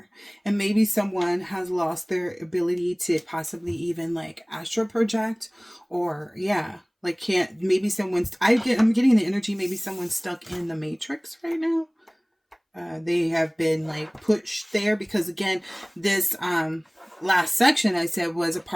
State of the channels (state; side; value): identical; both; correlation 1.00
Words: And maybe someone has lost their ability to possibly even like astral project, or yeah, like can't, maybe someone's, I'm getting the energy, maybe someone's stuck in the matrix right now. They have been like pushed there because again, this last section I said was a